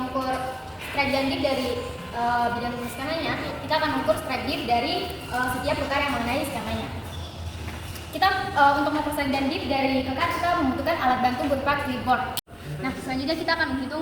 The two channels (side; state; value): both; identical; correlation 1.00